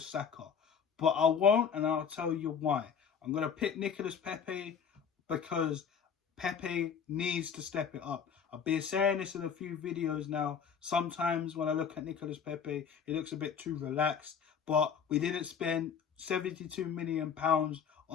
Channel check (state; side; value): quieter; right; 6.9 dB